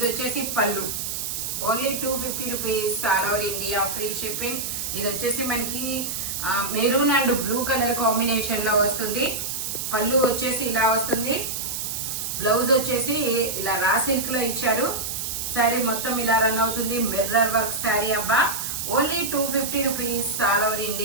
వచ్చేసి పళ్ళు. Only 250 rupees. All over India free shipping. ఇది వచ్చేసి మనకి maroon and blue colour combination లో వస్తుంది. పళ్ళు వచ్చేసి ఇలా వస్తుంది. బ్లౌజ్ వచ్చేసి ఇలా రా సిల్క్ లో ఇచ్చారు. శారీ మొత్తం ఇలా రన్ అవుతుంది. మిర్రర్ వర్క్ శారీ అబ్బా. Only 250 rupees. All over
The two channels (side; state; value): right; noise; hiss, 4 dB below the sound